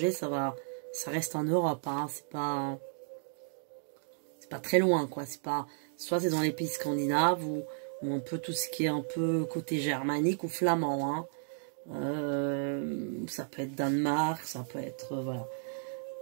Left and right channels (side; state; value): left; silent; digital silence